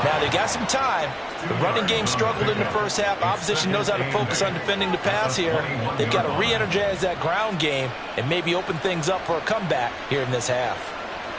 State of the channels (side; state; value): both; identical; correlation 1.00